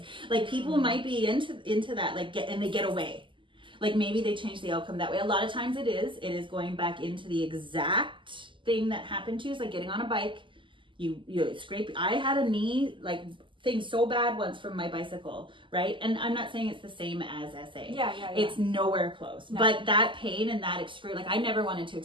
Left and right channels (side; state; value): left; late; 0.25 ms